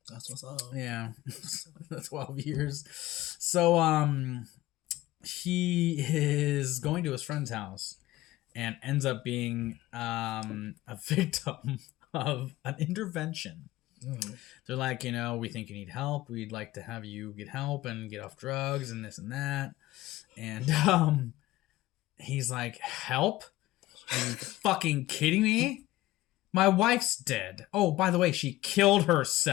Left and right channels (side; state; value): right; quieter; 16.9 dB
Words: That's what's up. Yeah. 12 years. So, he is going to his friend's house and ends up being a victim of an intervention. They're like, we think you need help. We'd like to have you get help and get off drugs and this and that. And he's like, help? Are you fucking kidding me? My wife's dead. Oh, by the way, she killed